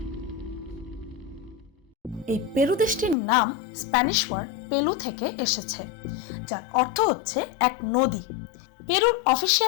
এই পেরু দেশটির নাম স্প্যানিশ ওয়ার্ড পেলু থেকে এসেছে, যার অর্থ হচ্ছে এক নদী। পেরুর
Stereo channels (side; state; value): right; drops out; at 3.2 s